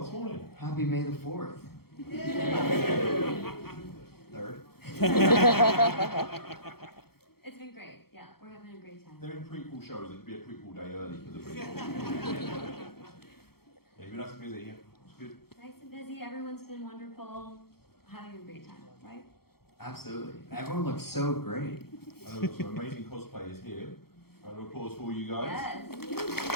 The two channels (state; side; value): late; right; 0.95 ms